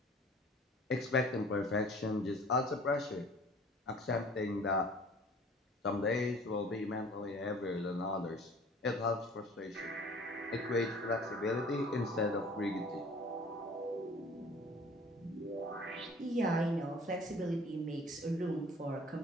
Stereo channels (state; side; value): normal; both; correlation 0.49